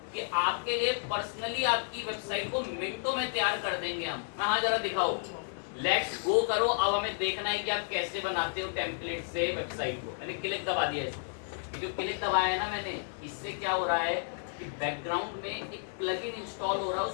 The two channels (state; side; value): silent; right; digital silence